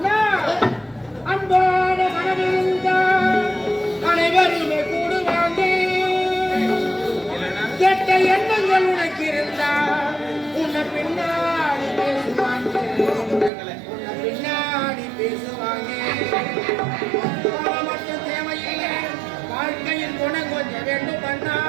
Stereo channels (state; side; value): drops out; left; at 13.5 s